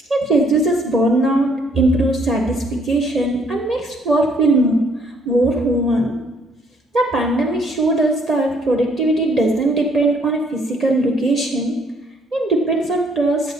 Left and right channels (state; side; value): normal; both; correlation 0.65